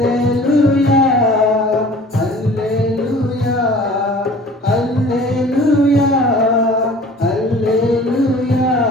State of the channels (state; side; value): normal; both; correlation 0.47